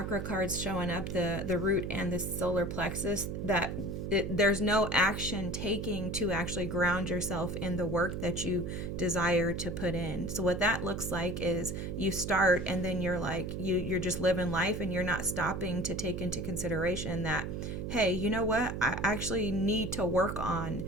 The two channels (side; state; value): right; noise; hum, 5 dB below the sound